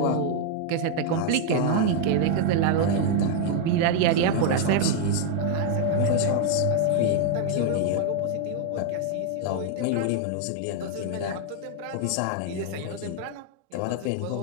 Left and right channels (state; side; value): different; both; correlation 0.00